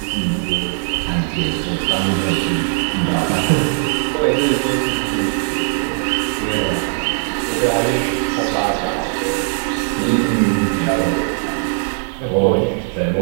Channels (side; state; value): left; silent; 67 dB below the other